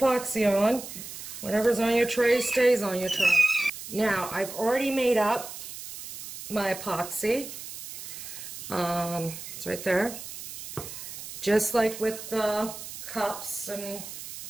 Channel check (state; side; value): noise; right; hiss, 11 dB below the sound